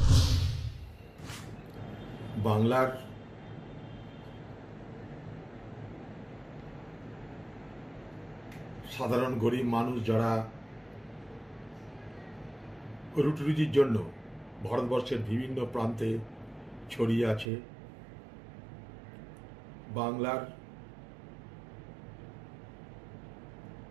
বাংলার সাধারণ গরিব মানুষ যারা রুটি রুজির জন্য ভারতবর্ষের বিভিন্ন প্রান্তে ছড়িয়ে আছে, বাংলার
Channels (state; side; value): drops out; left; at 17.4 s